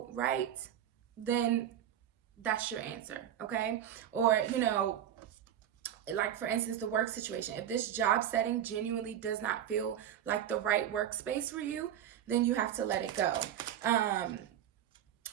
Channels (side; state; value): left; quieter; 10.4 dB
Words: right, then that's your answer, okay? Or, you know, like for instance, the work situation. If this job setting genuinely does not feel like the right workspace for you, then you have to let it go.